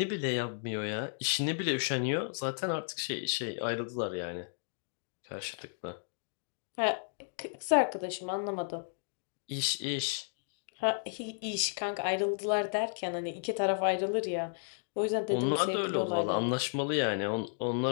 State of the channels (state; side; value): silent; right; digital silence